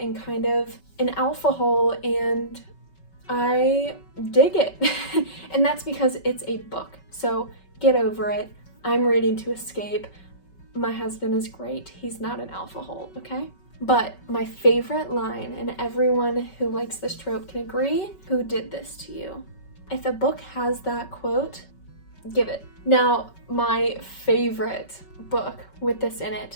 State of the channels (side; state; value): right; late; 5.3 ms